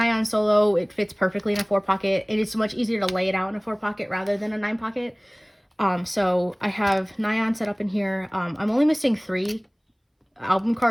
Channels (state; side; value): identical; both; correlation 1.00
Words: solo, it fits perfectly in a 4-pocket. It is much easier to lay it out in a 4-pocket rather than a 9-pocket. So I have Nyan set up in here. I'm only missing 3 album